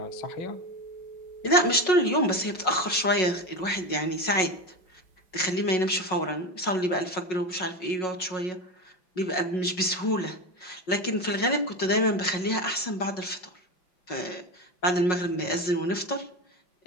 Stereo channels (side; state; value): right; late; 5.5 ms